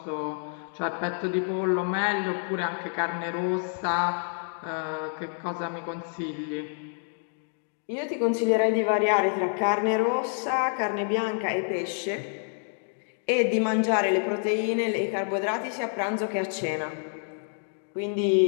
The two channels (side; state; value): right; silent; 59 dB below the other